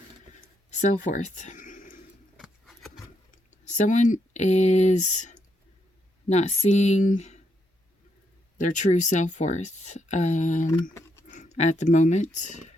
Self-worth. Someone is not seeing their true self-worth at the moment.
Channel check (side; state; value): both; normal; correlation 0.78